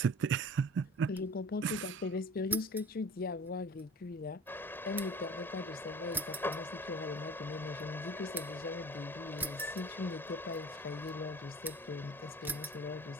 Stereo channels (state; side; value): normal; both; correlation 0.43